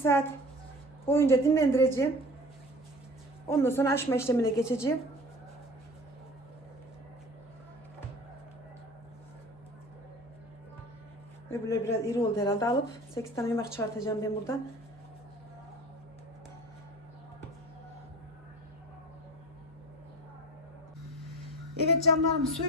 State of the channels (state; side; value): normal; both; correlation 0.40